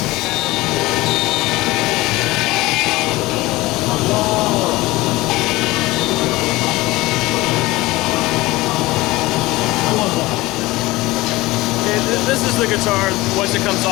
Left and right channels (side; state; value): right; quieter; 19.8 dB